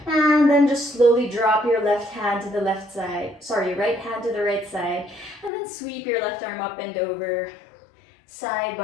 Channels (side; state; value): right; drops out; at 5.5 s